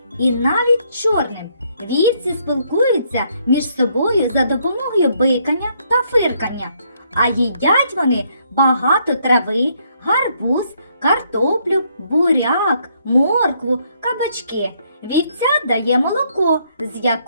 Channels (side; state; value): both; inverted; correlation -0.71